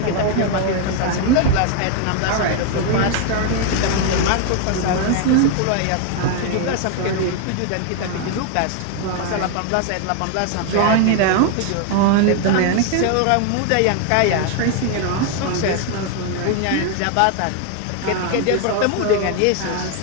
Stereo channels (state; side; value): different; both; correlation 0.01